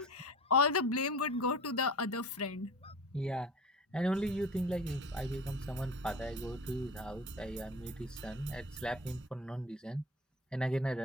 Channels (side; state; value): both; normal; correlation 0.36